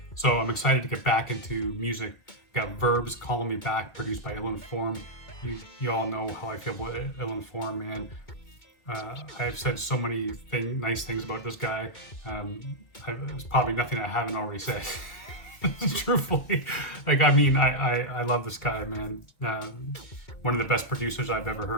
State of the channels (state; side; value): late; right; 2.0 ms